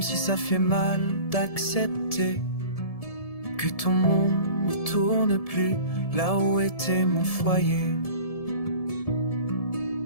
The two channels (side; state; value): right; late; 1.7 ms